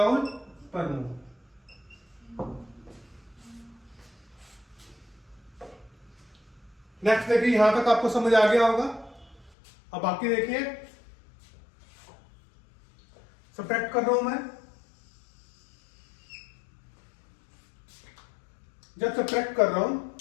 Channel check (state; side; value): drops out; right; at 9.5 s